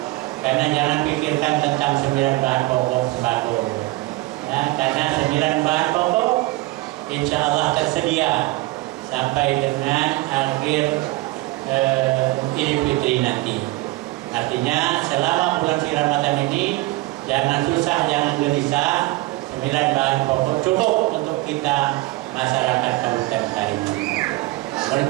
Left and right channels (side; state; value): left; quieter; 20.1 dB